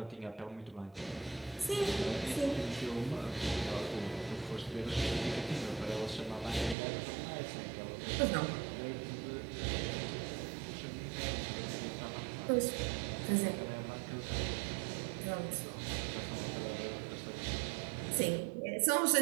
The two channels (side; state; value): left; drops out; at 6.8 s